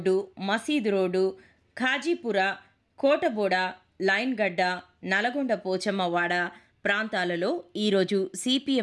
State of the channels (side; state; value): both; identical; correlation 1.00